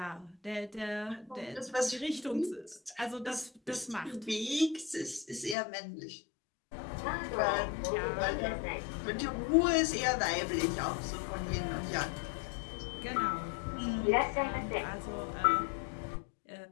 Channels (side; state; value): right; drops out; at 5.6 s